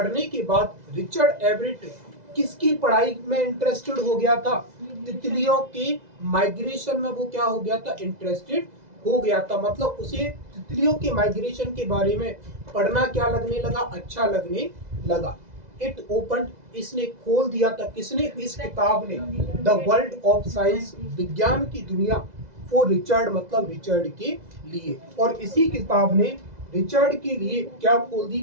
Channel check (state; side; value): late; left; 2.0 ms